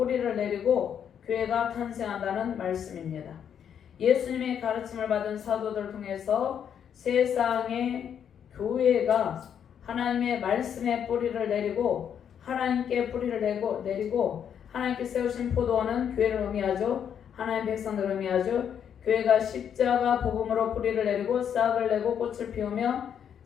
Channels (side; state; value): right; quieter; 8.5 dB